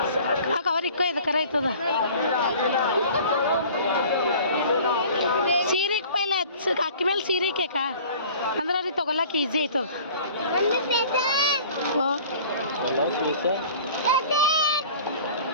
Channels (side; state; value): both; inverted; correlation -0.47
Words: ಹಾಕ ಅವ್ರ ಇಕ್ಕೋ ಇದು ಕರ ಆಯ್ತದ. ಸೀರೆಗೆ ಪೈಲೆ ಅಕ್ಕಿ ಮೇಲೆ ಸೀರೆ ಕೇಕ ಅಂದ್ರೆ ಅವ್ರಿಗೆ ತೊಗೊಳಕ್ಕೆ ಈಸಿ ಆಯ್ತದ.